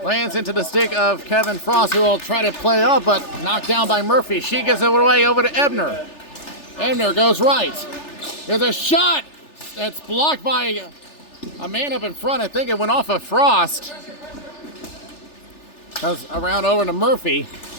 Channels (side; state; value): right; late; 3.4 ms